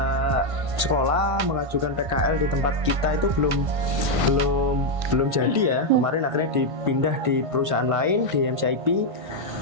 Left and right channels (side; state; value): left; late; 1.5 ms